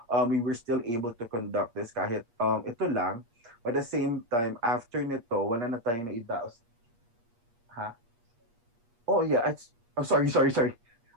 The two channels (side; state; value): left; late; 8.4 ms